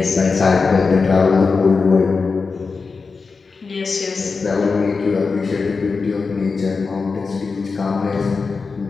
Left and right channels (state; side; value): quieter; right; 4.6 dB